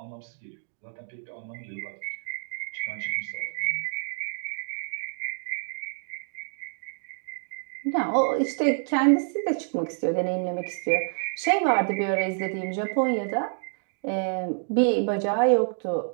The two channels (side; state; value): left; silent; 57 dB below the other